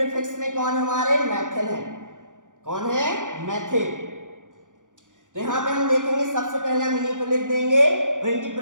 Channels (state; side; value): late; left; 0.87 ms